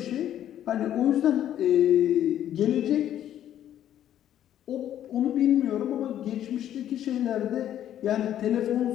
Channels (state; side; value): quieter; right; 11.2 dB